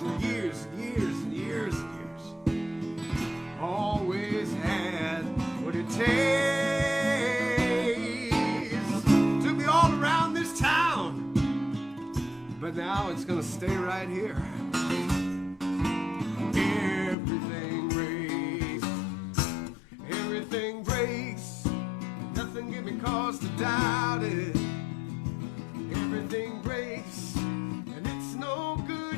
years and years and years and years. Always had what it takes to be all around this town. But now it's gonna stay right here. Everything breaks. Everything breaks. Nothing give me cause to doubt it. Everything breaks. And it's no good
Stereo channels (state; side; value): drops out; right; at 17.2 s